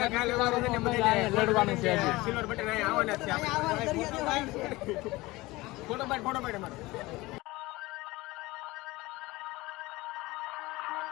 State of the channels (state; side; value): quieter; right; 20.7 dB